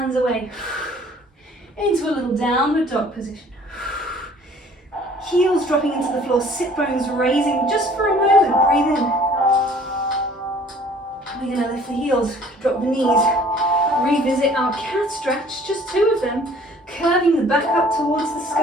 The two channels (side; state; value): both; normal; correlation 0.54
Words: away into a little downward dog position. Heels dropping into the floor, sit bones raising just for a moment. Breathe in. We're going to lift the heels, drop the knees, revisit our cat stretch, just 2 of them, curving the back up towards the